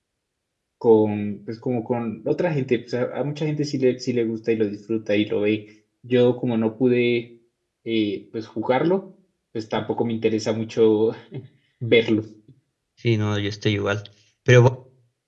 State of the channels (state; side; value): identical; both; correlation 1.00